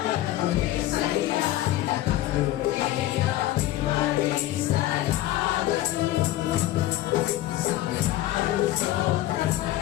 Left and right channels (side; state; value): right; quieter; 14.9 dB